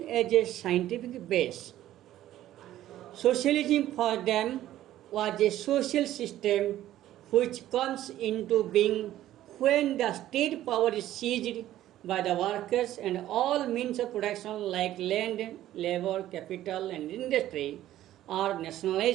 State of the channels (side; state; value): left; quieter; 13.4 dB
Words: as a scientific base. Socialism for them was a social system which comes into being when the state power is seized by the workers and all means of production like land, labor, capital and industry are